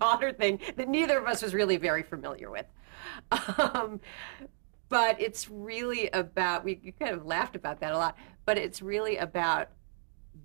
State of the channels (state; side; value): silent; left; 56 dB below the other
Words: thing that neither of us was really very familiar with. But it's really about, we kind of laughed about that a lot, but it's really about